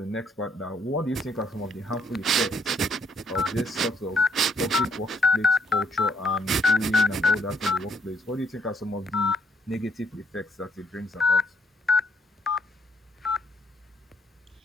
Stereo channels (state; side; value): normal; both; correlation 0.70